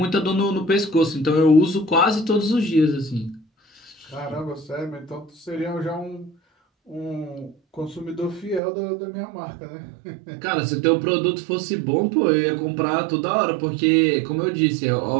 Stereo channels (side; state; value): left; drops out; at 8.6 s